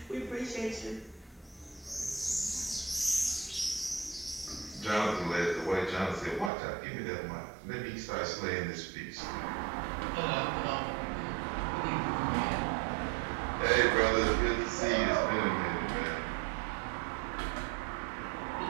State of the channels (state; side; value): drops out; left; at 6.5 s